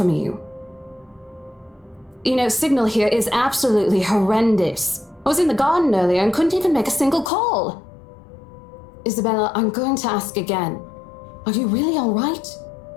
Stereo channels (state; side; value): drops out; right; at 7.3 s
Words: you. You know, signal here is absolutely horrendous. I was in the garden earlier and couldn't even make a single call. Isabella, I'm going to ask again. Are you really all right?